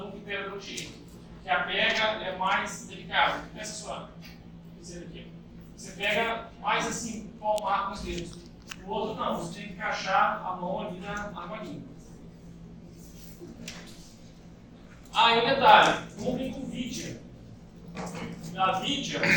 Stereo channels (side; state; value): both; identical; correlation 1.00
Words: no periodontia, que a pega é mais delicada. Essa sua, aqui. Você pega mais assim, palmar com os dedos. O outro não, você tem que encaixar a mão ali na argolinha. Aí um detalhe, comprem com vidia. A vidia